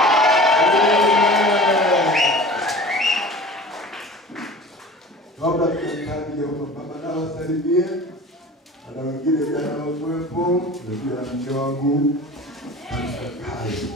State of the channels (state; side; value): normal; both; correlation 0.40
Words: Kabla tukaanza baba na wasalimie. Ana wengine jana wakuwepo, ndio na mke wangu. Kai.